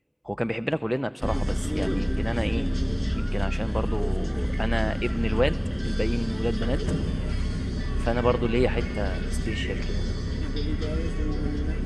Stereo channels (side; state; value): both; identical; correlation 1.00